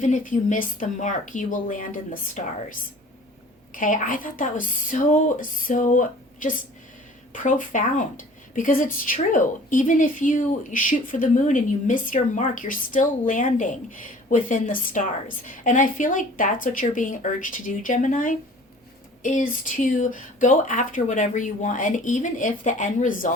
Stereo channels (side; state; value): both; normal; correlation 0.48